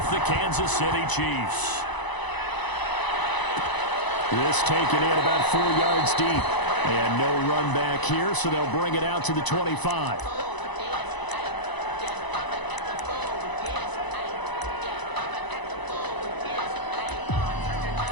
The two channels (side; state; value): right; late; 1.0 ms